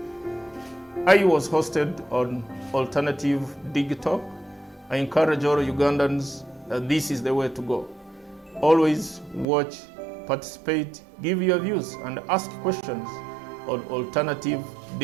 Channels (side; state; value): left; drops out; at 9.5 s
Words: I was hosted on Alternative Dig Talk. I encourage all Ugandans that this is the way to go. Always watch, participate, give your views and ask questions on Alternative